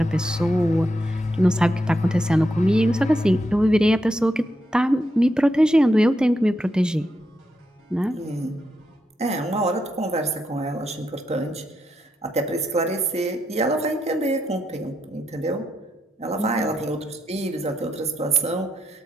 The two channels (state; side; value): normal; both; correlation 0.82